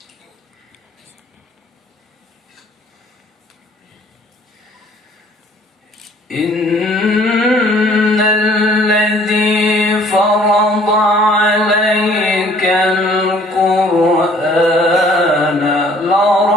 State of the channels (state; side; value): normal; both; correlation 0.57